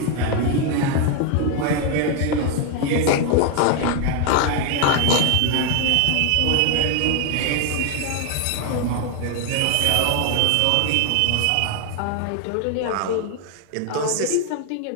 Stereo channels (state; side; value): different; both; correlation 0.01